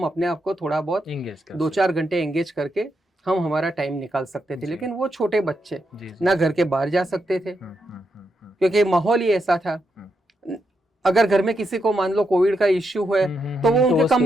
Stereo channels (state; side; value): normal; both; correlation 0.82